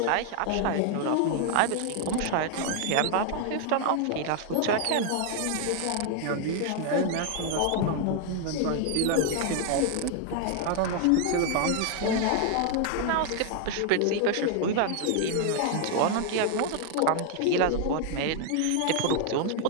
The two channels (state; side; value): different; both; correlation 0.00